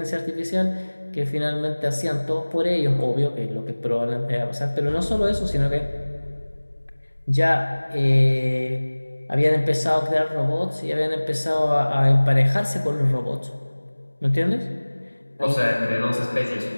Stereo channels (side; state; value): both; inverted; correlation -1.00